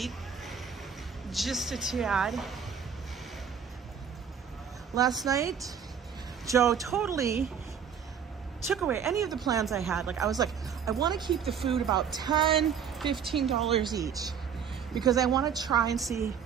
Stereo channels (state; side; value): quieter; left; 7.4 dB